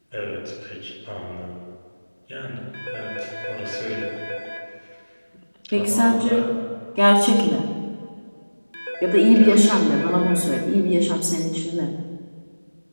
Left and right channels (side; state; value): both; inverted; correlation -1.00